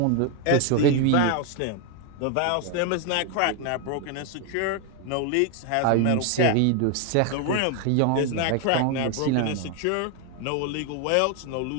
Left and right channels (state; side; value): different; both; correlation 0.01